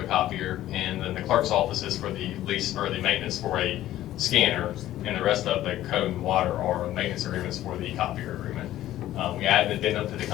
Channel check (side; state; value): right; quieter; 13.8 dB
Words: copier, and then the clerk's office is for the lease, or the maintenance for a scanner, and the rest of the code and water are maintenance agreements for the copier agreement. We added an addendum to the